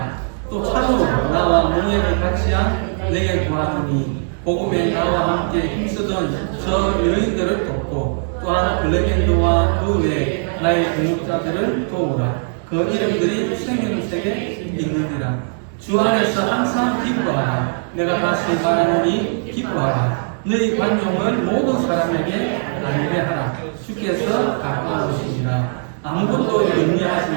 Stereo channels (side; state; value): left; silent; 59 dB below the other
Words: 또 참으로 나와 몽예를 같이한 내게 구하노니 복음에 나와 함께 힘쓰던 저 여인들을 돕고 또한 블레겐드와 그 외 나의 동역자들을 도우라. 그 이름들이 생명책에 있느니라. 주 안에서 항상 기뻐하라. 내가 다시 말하노니 기뻐하라. 너희 관용을 모든 사람에게 알게 하라. 주께서 가까우시니라. 아무것도